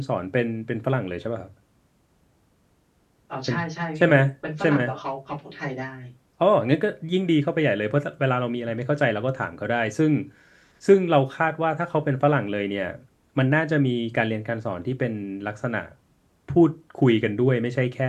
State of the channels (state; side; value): identical; both; correlation 1.00